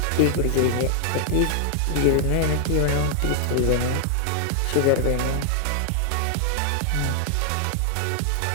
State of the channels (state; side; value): different; both; correlation 0.00